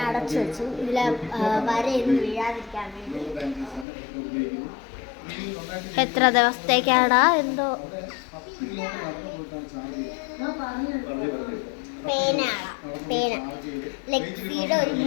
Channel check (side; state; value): right; drops out; at 3.9 s